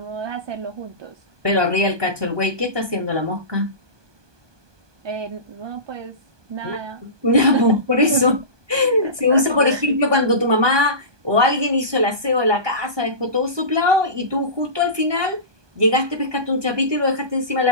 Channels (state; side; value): late; left; 1.2 ms